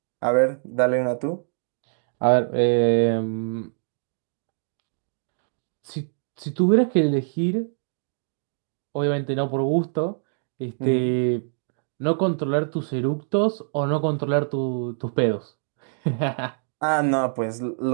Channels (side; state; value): left; silent; digital silence